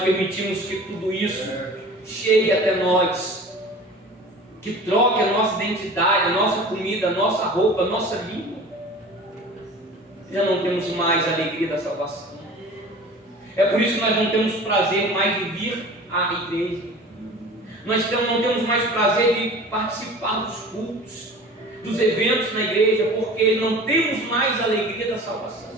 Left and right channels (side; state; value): both; normal; correlation 0.41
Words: permitimos que tudo isso chegue até nós, que troque a nossa identidade, a nossa comida, a nossa roupa, a nossa língua, já não temos mais a alegria da salvação. É por isso que nós não temos prazer mais de vir à igreja. Nós não temos mais prazer de participar dos cultos, dos eventos na igreja, porque não temos mais a alegria da salvação.